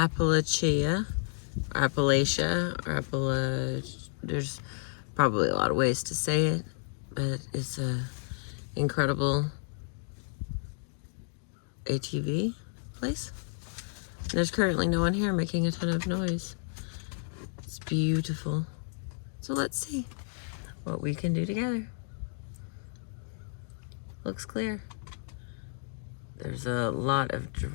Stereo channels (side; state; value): right; silent; digital silence